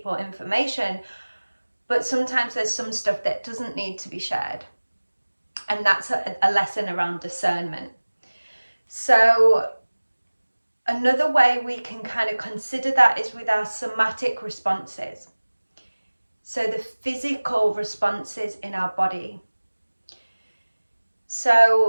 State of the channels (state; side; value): inverted; both; correlation -1.00